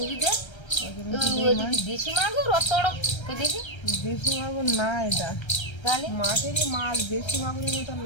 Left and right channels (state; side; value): late; right; 1.3 ms